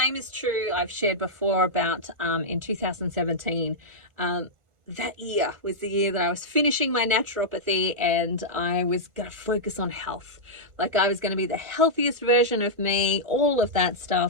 is true, I've shared before about in 2017, that year was the year that I was finishing my naturopathy, and I was going to focus on health. Like, I was going to be the healthiest version of me, all of that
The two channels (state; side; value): late; left; 1.5 ms